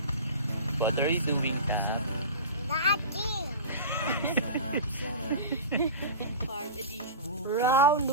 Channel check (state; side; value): inverted; both; correlation -0.31